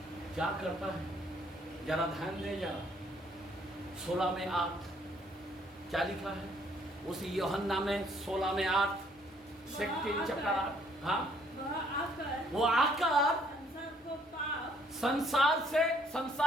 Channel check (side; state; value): both; normal; correlation 0.64